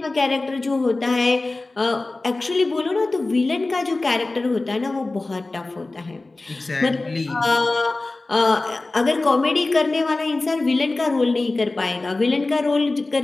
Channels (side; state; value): right; quieter; 3.2 dB